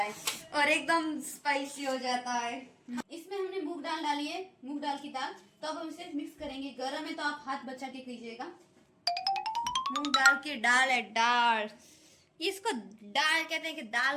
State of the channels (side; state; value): both; identical; correlation 1.00